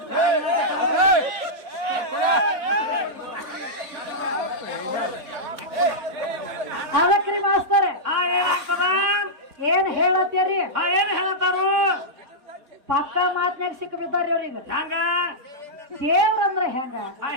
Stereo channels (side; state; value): left; late; 3.6 ms